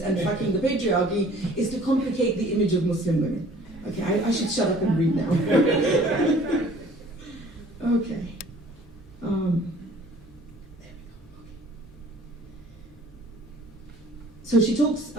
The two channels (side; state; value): both; normal; correlation 0.52